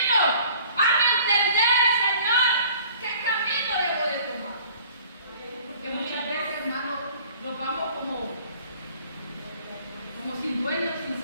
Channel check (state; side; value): inverted; both; correlation -0.52